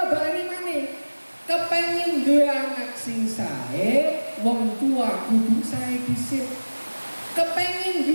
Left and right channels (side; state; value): both; inverted; correlation -1.00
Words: baleni maneh, kepengin duwe anak sing sae, wong tua kudu sae dhisik. Kepengin